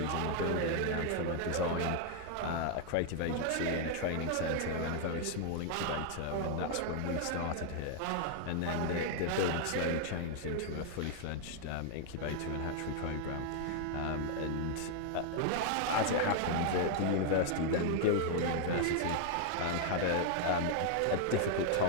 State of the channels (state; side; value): different; both; correlation 0.00